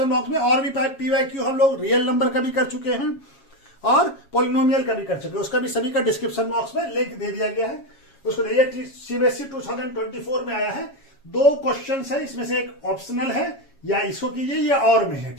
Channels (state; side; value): late; right; 7.3 ms